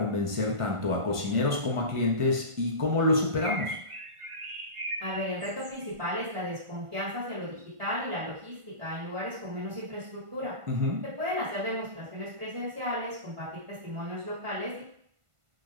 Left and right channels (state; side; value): late; left; 1.5 ms